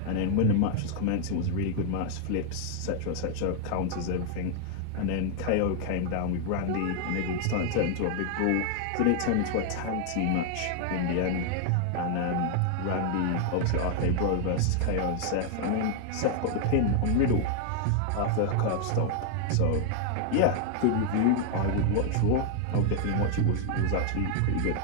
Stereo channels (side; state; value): both; different; correlation 0.00